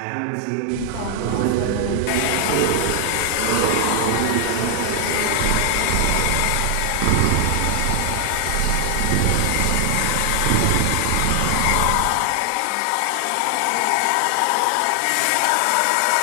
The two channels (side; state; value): both; different; correlation 0.00